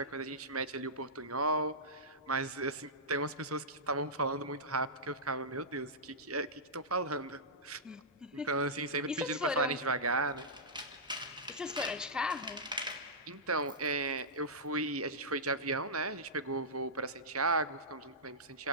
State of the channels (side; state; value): both; normal; correlation -0.14